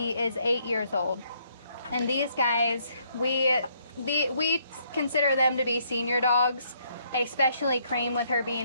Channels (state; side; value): inverted; both; correlation -0.70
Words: is 8 years old. And these guys, we consider them to be senior dogs, especially Cream with her